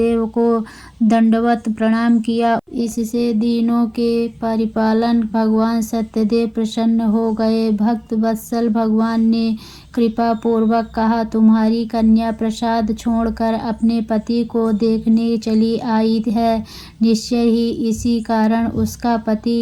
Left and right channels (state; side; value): identical; both; correlation 1.00